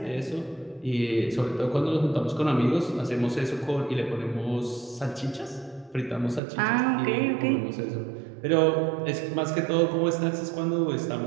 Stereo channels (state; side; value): drops out; left; at 6.4 s